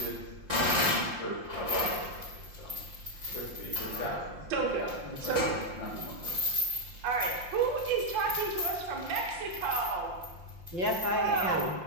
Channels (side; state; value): left; late; 5.7 ms